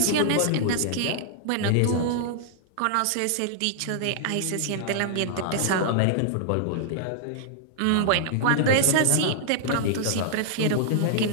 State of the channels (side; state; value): both; different; correlation -0.01